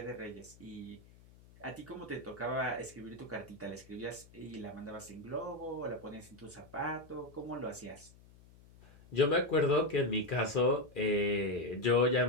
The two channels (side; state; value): left; noise; hum, 24 dB below the sound